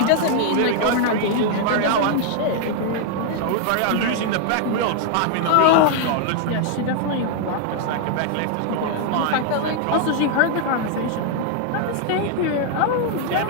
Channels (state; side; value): different; both; correlation 0.00